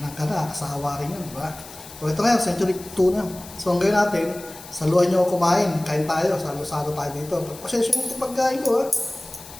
Nakakasawa rin yun, diba? So ito ngayon, Century tuna. So ang gawin natin, saluhan nyo ako kumain. Kain tayo, salo-salo tayo dito. Pasensya mo ito pagkain ko, ha?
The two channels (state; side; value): noise; left; hiss, 17 dB below the sound